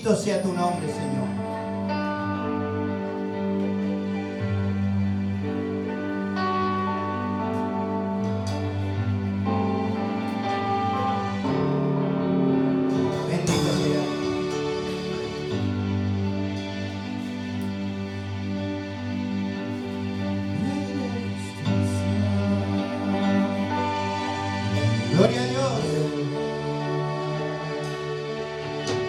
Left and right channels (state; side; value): identical; both; correlation 1.00